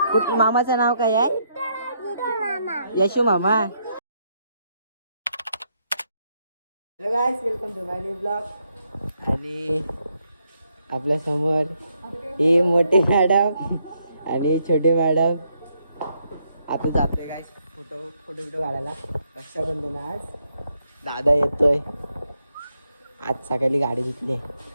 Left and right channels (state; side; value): inverted; both; correlation -0.76